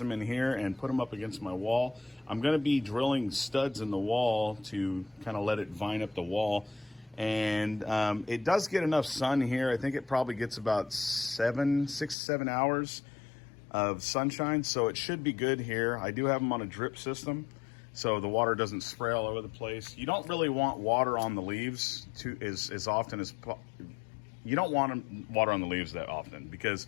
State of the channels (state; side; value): drops out; right; at 12.2 s